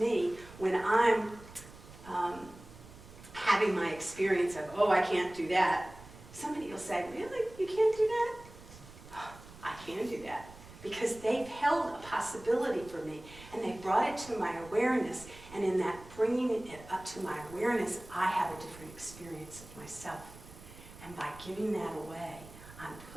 when I'm having my experience of, oh, I can't do that. Somebody will say, really? You can't do that? Oh, I can do that. Because they've held a possibility for me, and they brought it to my awareness, and in that bringing it up to my awareness, I have a different experience of myself. And by giving that away, I'm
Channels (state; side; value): noise; right; rumble, 18 dB below the sound